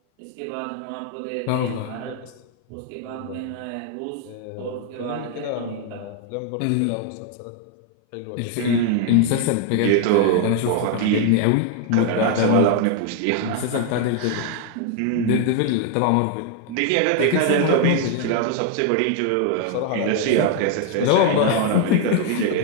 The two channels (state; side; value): different; both; correlation 0.00